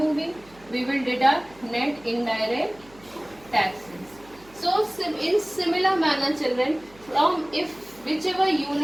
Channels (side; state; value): right; noise; hum, 25 dB below the sound